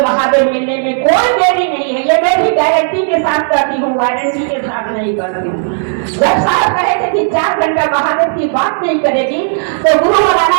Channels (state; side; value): silent; left; digital silence